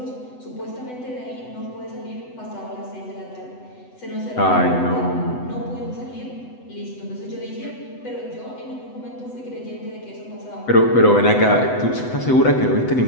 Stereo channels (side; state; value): right; late; 8.0 ms